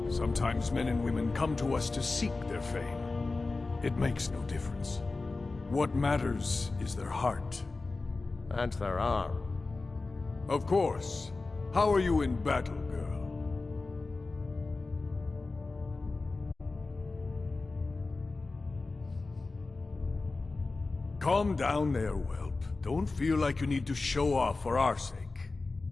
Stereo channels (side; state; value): right; quieter; 3.6 dB